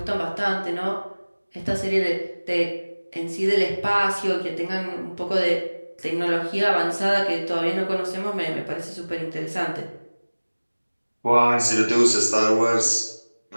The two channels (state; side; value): inverted; both; correlation -1.00